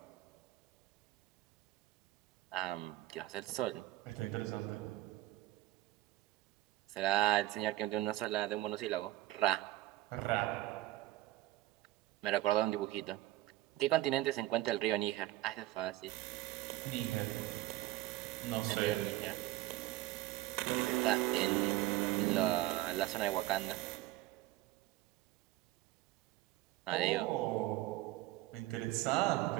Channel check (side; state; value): left; quieter; 16.6 dB